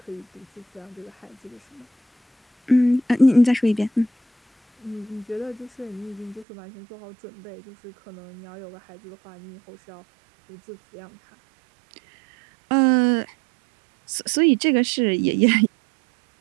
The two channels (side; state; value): left; drops out; at 6.5 s